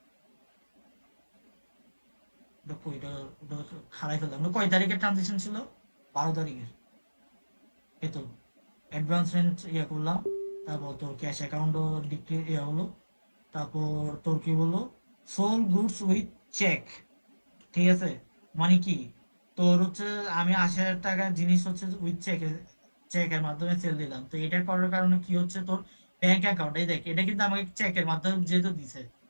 ওটা কইটা, ওটা খারাই ফেললাম না। কয় তারিখের ট্রানজেকশন ছিল? 12 তারিখের। এই তো অ্যাডভান্স রেন্ট ইয়ে করলাম, তারপর তোর ক্যাশ অ্যাকাউন্টও ডিক্রিজ ইয়ে হলো। তারপর তোর কি বললো, সোল গুডস উইথ চেক। ঠিক আছে, মানে কি তোর হচ্ছে আমি 80,000 টাকার জিনিস হচ্ছে উইথ চেকের মাধ্যমে সেল দিলাম। তো এটা করার কারণে কি হচ্ছে, তোর ব্যাংক অ্যাকাউন্ট, এই দেখ এটা কিন্তু আমাকে চেকের মাধ্যমে যেহেতু দিছে,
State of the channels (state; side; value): inverted; both; correlation -1.00